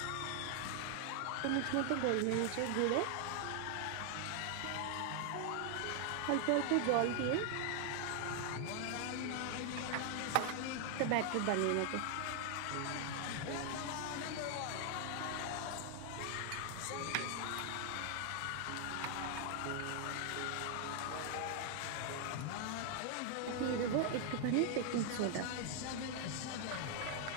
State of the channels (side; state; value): both; different; correlation 0.00